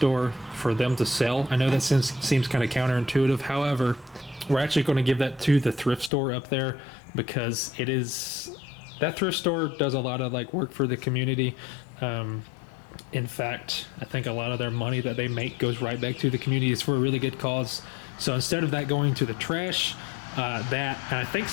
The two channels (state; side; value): drops out; right; at 6.1 s